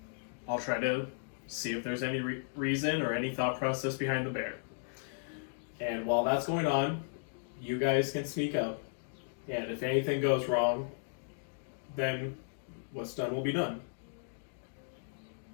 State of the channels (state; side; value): silent; right; digital silence